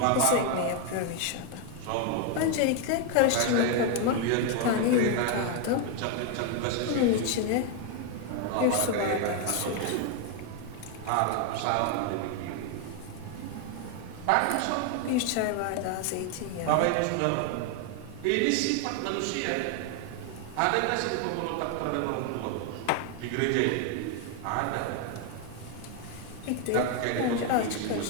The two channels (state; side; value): different; both; correlation 0.01